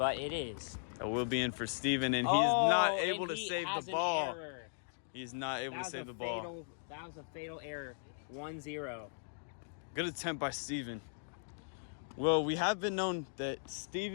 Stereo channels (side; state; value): right; silent; digital silence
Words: it is. That will be in for Steven, and he is not able to he save has the an ball. Error. He's not able to save the ball. That was a fatal error. 1-0. Good attempt by Steven. Well, we have been known that